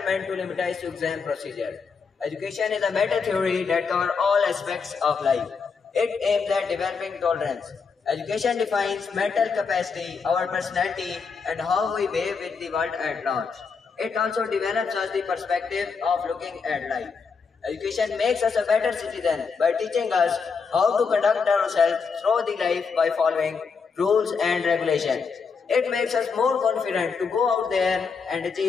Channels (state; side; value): quieter; right; 5.3 dB